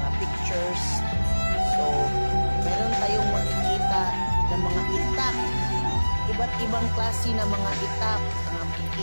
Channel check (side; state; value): both; inverted; correlation -1.00